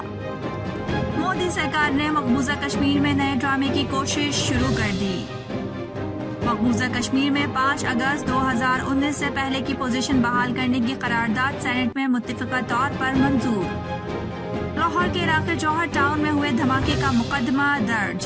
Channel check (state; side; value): identical; both; correlation 1.00